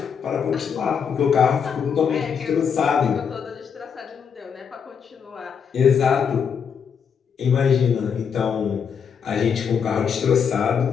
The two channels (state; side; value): quieter; right; 6.9 dB